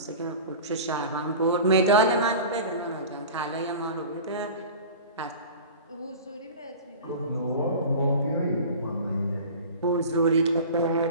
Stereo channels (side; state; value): both; inverted; correlation -0.36